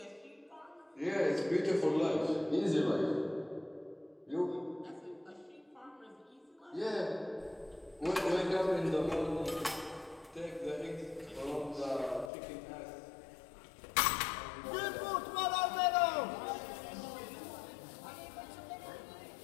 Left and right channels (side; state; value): right; drops out; at 12.3 s